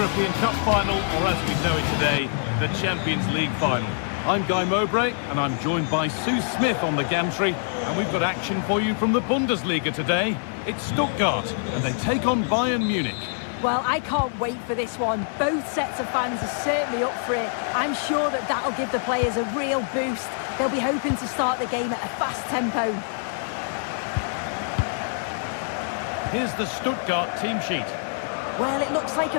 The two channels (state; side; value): silent; right; digital silence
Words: Cup final, or as we know it today, the Champions League final. I'm Guy Mowbray, and I'm joined by Sue Smith on the gantry, and we've got action for you from the Bundesliga today. It's Stuttgart, and they take on Bayern Munich. Well, I can't wait for this one. Both sets of fans are certainly up for it. I'm sure that that'll give the players a real boost. They'll be hoping to start the game at a fast tempo. Here's the Stuttgart team sheet. Well, it looks like